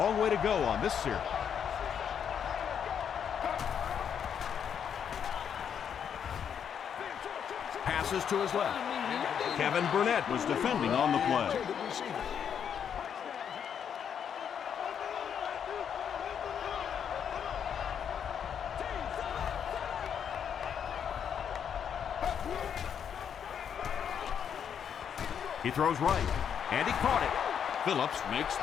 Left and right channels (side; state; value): right; quieter; 8.0 dB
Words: way to go on this series. Passes to his left. Kevin Burnett was defending on the play. He throws right, and he caught it. Phillips makes